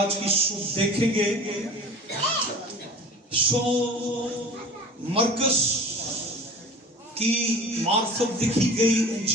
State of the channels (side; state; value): both; normal; correlation 0.41